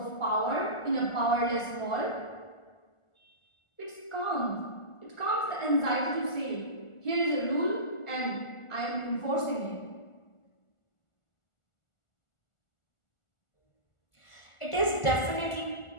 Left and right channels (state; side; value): late; right; 1.4 ms